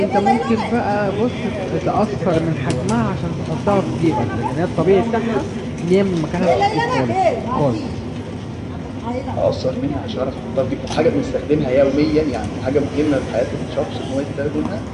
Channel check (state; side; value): identical; both; correlation 1.00